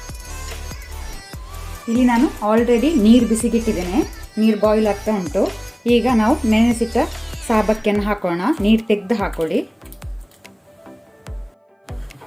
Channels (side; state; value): both; identical; correlation 1.00